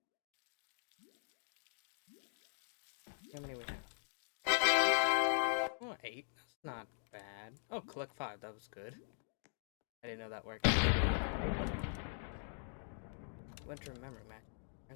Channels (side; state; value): right; silent; digital silence